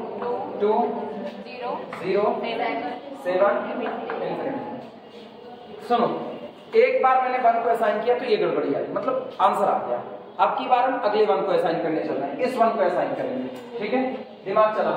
2 0 7 इंफिनिटी। सुनो, एक बार मैंने 1 को असाइन किया तो ये गड़बड़ी आई, मतलब आंसर आ गया। अब की बार हम अगले 1 को असाइन करने चल रहे हैं, इस 1 को असाइन करेंगे। ठीक है, दिमाग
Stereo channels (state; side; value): identical; both; correlation 1.00